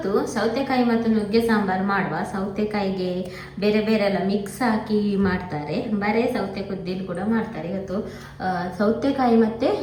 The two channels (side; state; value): both; identical; correlation 1.00